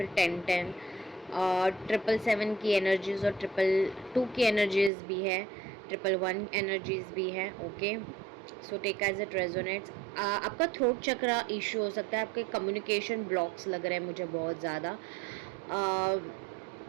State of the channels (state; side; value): drops out; left; at 4.9 s